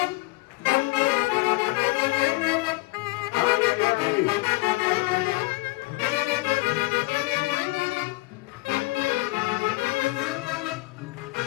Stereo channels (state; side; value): quieter; right; 23.4 dB